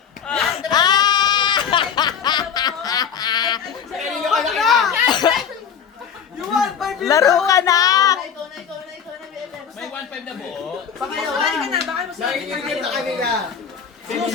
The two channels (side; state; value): right; quieter; 7.5 dB